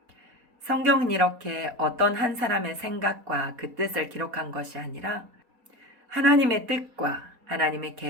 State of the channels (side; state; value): left; late; 4.2 ms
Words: 성경은 이렇게 어떤 한 사람의 생각과 그 뜻을 기록한 것이 아니라 하나님의 뜻과 하나님의